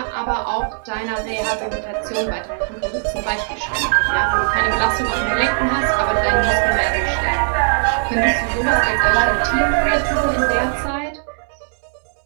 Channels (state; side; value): silent; left; digital silence